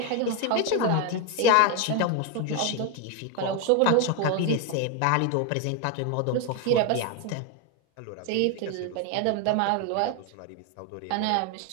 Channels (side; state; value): both; different; correlation 0.01